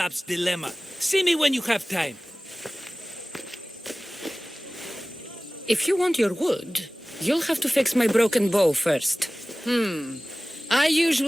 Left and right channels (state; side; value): normal; both; correlation 0.98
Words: dilemma. See me when you have time. If you want your wood, you'll have to fix my broken bow first. I